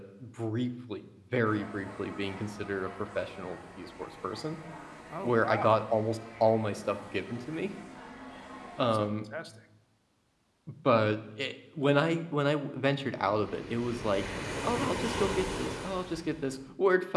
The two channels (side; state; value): both; identical; correlation 1.00